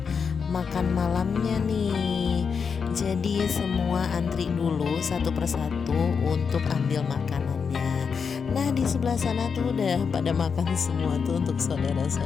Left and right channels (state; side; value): quieter; right; 6.0 dB